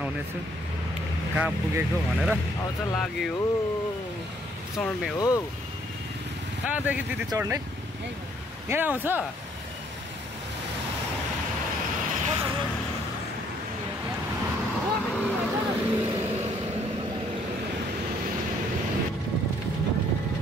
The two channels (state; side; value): normal; both; correlation 0.65